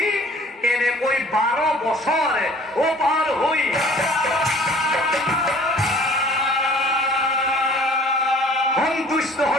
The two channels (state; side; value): normal; both; correlation 0.52